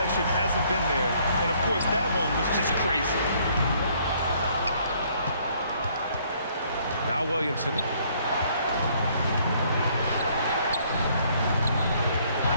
hasn't been there. And, of course, that one was just crazy. Now Williamson.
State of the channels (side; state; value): both; inverted; correlation -0.64